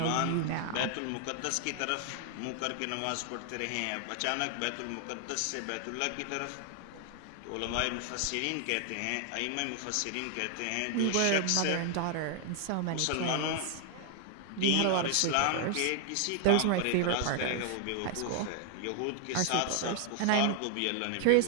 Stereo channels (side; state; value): both; different; correlation 0.00